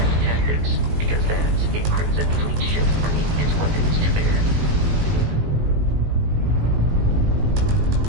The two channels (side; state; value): left; late; 19 ms